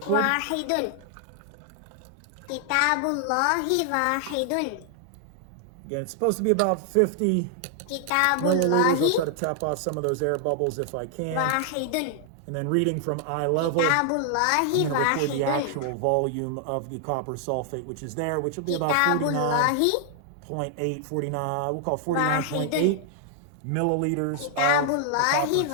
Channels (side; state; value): both; different; correlation 0.00